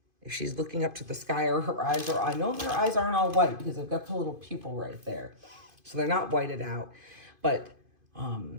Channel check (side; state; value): left; late; 2.5 ms